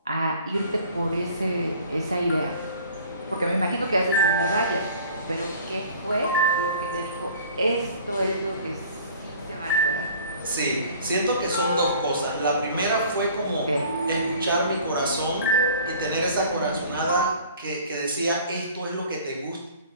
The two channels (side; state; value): both; inverted; correlation -0.49